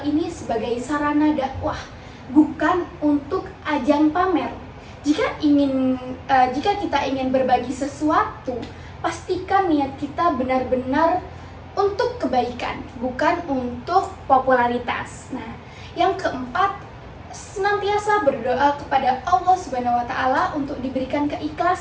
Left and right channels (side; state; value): both; identical; correlation 1.00